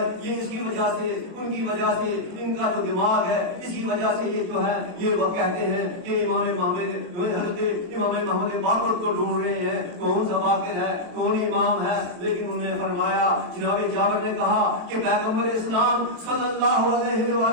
یہ اس کی وجہ سے ان کی وجہ سے ان کا جو دماغ ہے اسی وجہ سے یہ جو ہے یہ وہ کہتے ہیں کہ حضرت امام محمد باقر کو ڈھونڈ رہے ہیں، کون سا باقر ہے، کون امام ہے. لیکن انہوں نے فرمایا، جناب جابر نے کہا کہ پیغمبر اسلام صلی اللہ علیہ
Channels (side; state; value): left; late; 23 ms